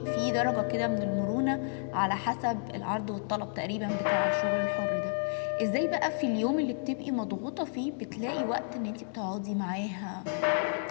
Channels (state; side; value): silent; right; digital silence